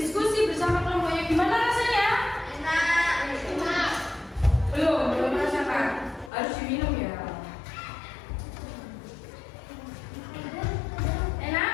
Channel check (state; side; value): drops out; right; at 6.3 s